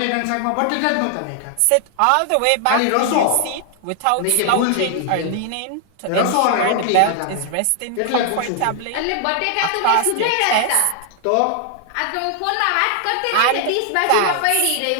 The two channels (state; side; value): different; both; correlation 0.00